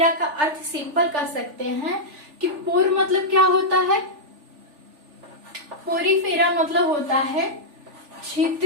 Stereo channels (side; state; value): left; late; 3.4 ms